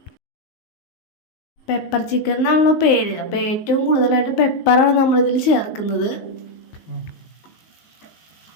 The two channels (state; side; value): late; right; 19 ms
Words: പെപ്പർ ചിക്കൻ എന്നാണല്ലോ പേര്. അപ്പോൾ ഏറ്റവും കൂടുതലായിട്ട് പെപ്പറാണ് നമ്മളിതിൽ ചേർക്കുന്നത്.